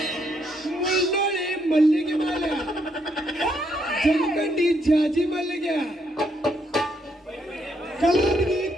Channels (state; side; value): normal; both; correlation 0.74